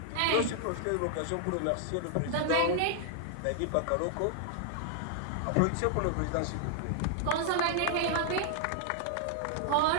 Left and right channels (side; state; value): both; different; correlation -0.01